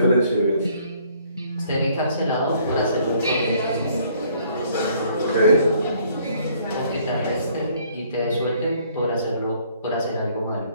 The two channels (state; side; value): inverted; both; correlation -0.62